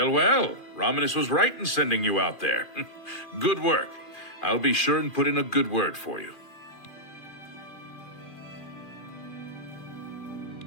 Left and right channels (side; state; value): right; late; 2.4 ms